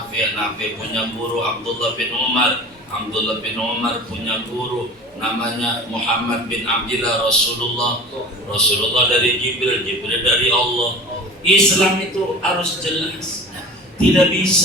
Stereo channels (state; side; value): normal; both; correlation 0.38